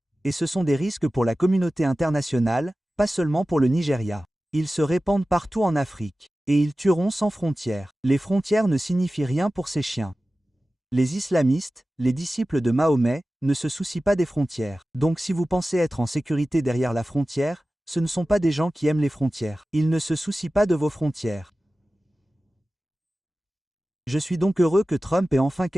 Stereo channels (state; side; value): normal; both; correlation 0.96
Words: Et ce sont des risques pour la communauté internationale, pas seulement pour le Nigeria. Ils se répandent partout en Afrique. Et ils tueront sans frontières. Les frontières ne signifient rien pour ces chiens. Les islamistes, les disciples de Mahomet, ne se soucient pas des frontières. Donc si vous pensez être en sécurité derrière la frontière, ce ne sont pas des gens qui aiment les frontières. Ils ne se soucient pas de vos frontières. Je suis donc heureux que Trump ait enfin